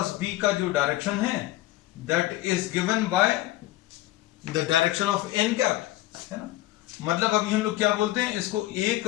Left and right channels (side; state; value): right; quieter; 16.6 dB